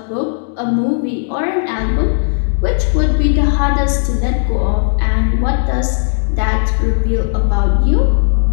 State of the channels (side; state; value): right; silent; digital silence